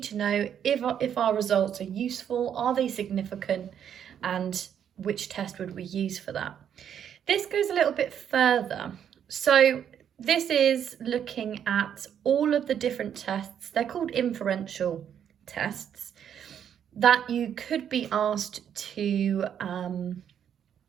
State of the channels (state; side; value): quieter; left; 8.9 dB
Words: to know if our results are useful, are they significant, and which test would we use for that. This goes a little bit further. So this is looking at all of the different tests. They're called inferential tests that you could be asked to